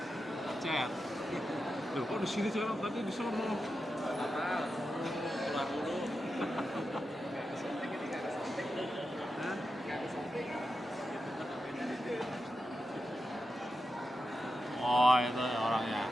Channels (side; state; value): both; normal; correlation 0.89